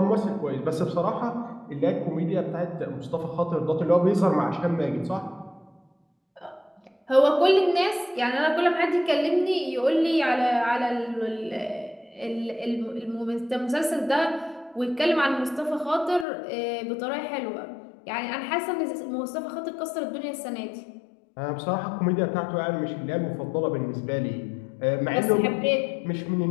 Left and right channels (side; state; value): right; drops out; at 16.2 s